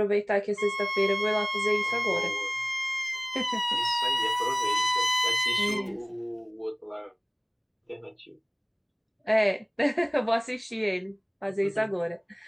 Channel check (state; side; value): identical; both; correlation 1.00